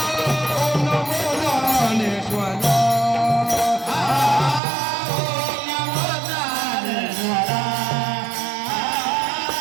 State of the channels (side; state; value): left; drops out; at 4.6 s